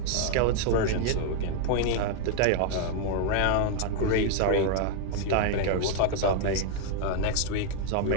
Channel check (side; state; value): both; different; correlation 0.01